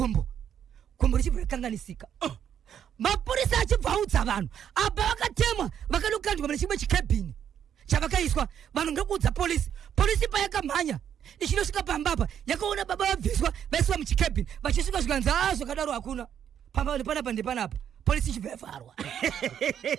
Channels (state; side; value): quieter; left; 9.1 dB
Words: gumbo richibva rakanganisika mapurisa achibva audza vanhu apa vakatemwa vakanokandwa mune chimwe chikabhini chavakaiswa vanhu ndokuudza polisi payakamhanya ichinosvika pambapa yakaona baba vabviswa vaiswa muchikabhini vachisvika zvikanzi zvakadaro hakuna pamba panapa polisi ichibva yavharwa